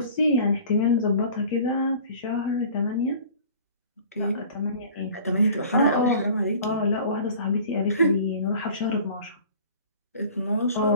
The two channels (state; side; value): inverted; both; correlation -0.45